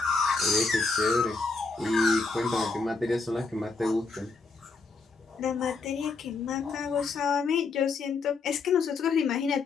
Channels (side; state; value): right; quieter; 4.3 dB